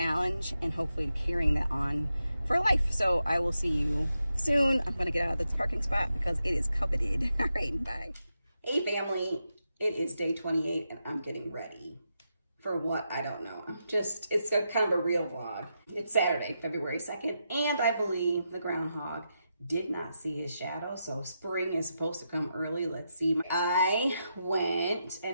and hopefully carrying that on for life. So I will see you soon. I'm gonna get out of this parking spot because it is coveted. All right, bye. Hey family, it is day 28 and I'm getting ready for what, I don't know. It's a kind of a real vlog. It's Saturday, February 2nd, and I believe the groundhog did not see his shadow, so spring is supposed to come early. Let's see. I went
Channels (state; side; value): inverted; both; correlation -0.86